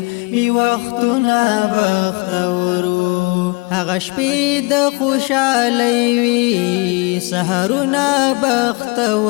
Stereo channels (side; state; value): right; quieter; 28.5 dB